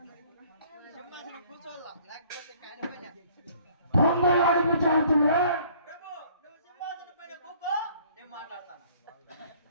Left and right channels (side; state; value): both; inverted; correlation -0.57